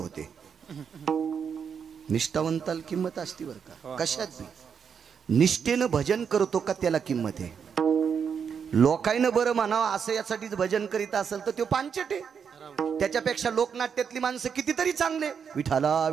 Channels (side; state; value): left; quieter; 6.9 dB